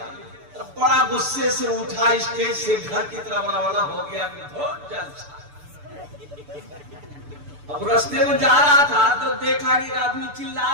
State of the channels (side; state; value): left; late; 6.9 ms